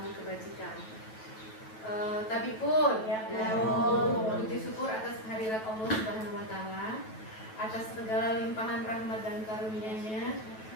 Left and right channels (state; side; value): late; right; 9.2 ms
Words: kebajikan. Tapi pun, puji syukur atas kehadirat Allah Subhanahu wa Ta'ala, atas segala limpahan rahmat dan karunia-Nya.